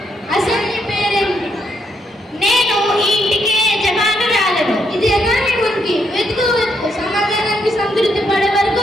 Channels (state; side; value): normal; both; correlation 0.76